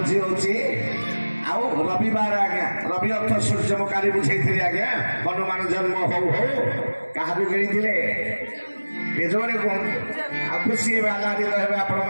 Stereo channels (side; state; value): both; inverted; correlation -1.00